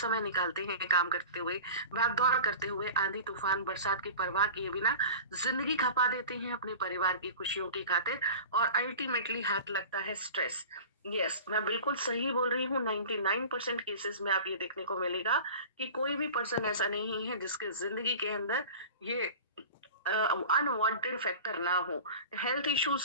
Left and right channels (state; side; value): inverted; both; correlation -0.37